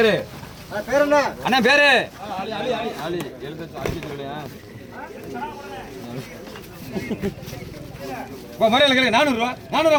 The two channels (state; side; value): identical; both; correlation 1.00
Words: அண்ணன் பேரு ஆளி முறையில் கேளு 400 ரூபா 400